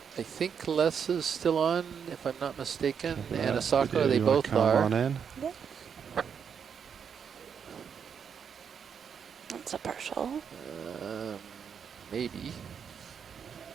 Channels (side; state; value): left; quieter; 7.1 dB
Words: I think Les is still on, if I'm not mistaken. And Asako, they both are. That's a partial. Maybe.